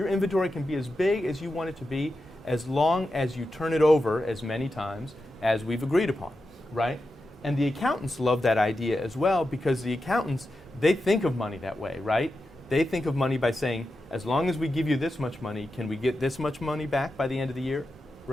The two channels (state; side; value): normal; both; correlation 0.90